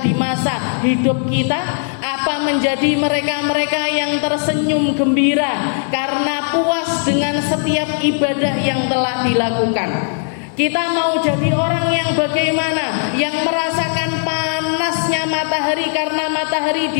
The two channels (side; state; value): right; silent; 68 dB below the other